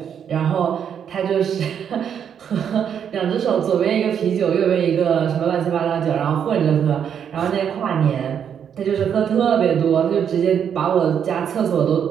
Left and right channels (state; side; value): quieter; left; 8.2 dB